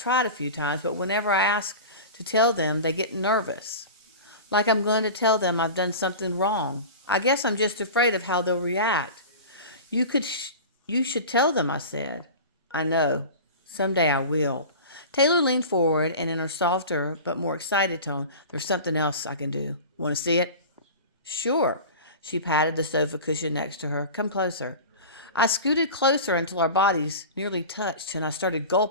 tried a few times, but whenever I ask to tell them, they get nervous. Like I'm going to tell them I've done something wrong. I guess I'm just afraid of how they'll react. You should tell them, I said. I know. Someday I will. Taylor leaned forward, and in her softer but more excited tone, there's something else I can do. Want to see it? Sure. She patted the sofa cushion next to her. Come closer. I scooted closer until our bodies nearly touched, and I started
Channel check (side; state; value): both; inverted; correlation -0.33